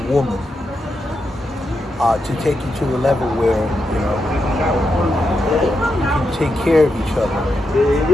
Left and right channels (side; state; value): both; normal; correlation 0.85